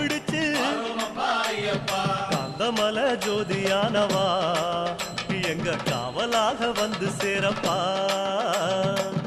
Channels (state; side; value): identical; both; correlation 1.00